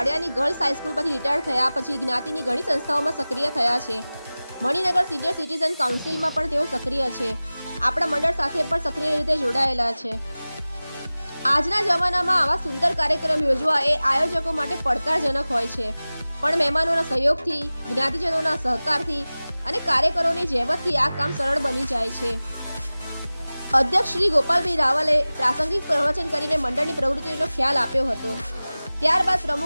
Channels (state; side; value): inverted; both; correlation -0.98